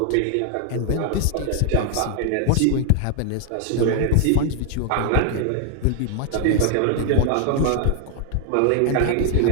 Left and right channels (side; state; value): both; different; correlation 0.00